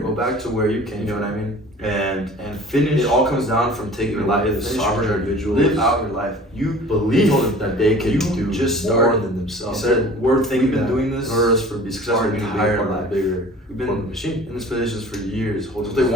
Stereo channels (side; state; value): both; normal; correlation 0.45